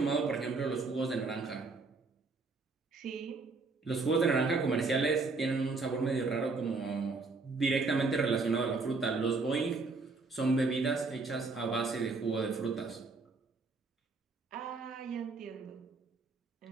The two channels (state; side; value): quieter; left; 3.9 dB